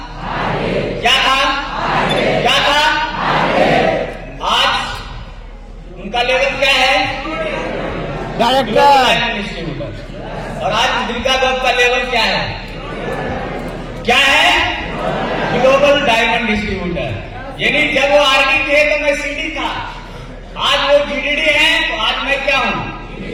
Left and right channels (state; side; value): identical; both; correlation 1.00